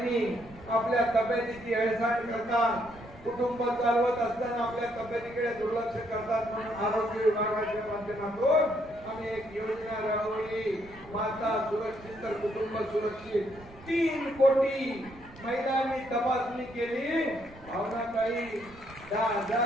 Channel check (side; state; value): right; noise; rumble, 22 dB below the sound